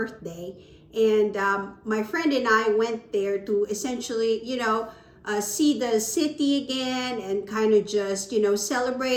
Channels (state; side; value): identical; both; correlation 1.00